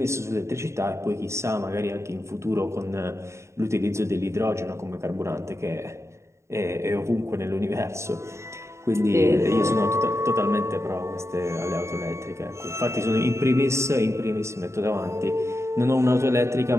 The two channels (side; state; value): left; late; 0.14 ms